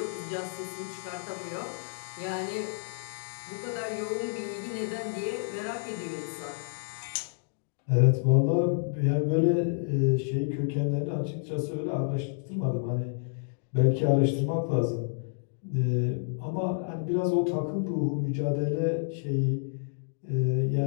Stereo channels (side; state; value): right; silent; digital silence